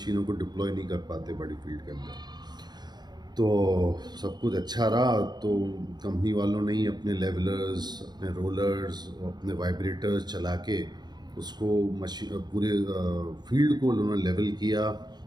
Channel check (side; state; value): left; late; 0.20 ms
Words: को डिप्लॉय नहीं कर पाते बड़ी फील्ड के अंदर। तो सब कुछ अच्छा रहा। तो कंपनी वालों ने ही अपने लेवलर्स, अपने रोलर्स, अपने वाइब्रेटर्स चला के उसको पूरे फील्ड को उन्होंने लेवल किया,